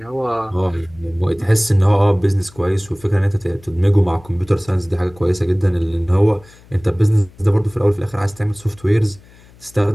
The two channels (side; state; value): left; noise; hum, 25 dB below the sound